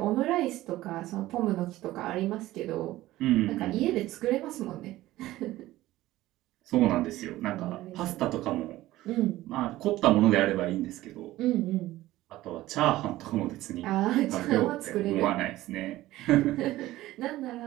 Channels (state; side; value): quieter; left; 16.3 dB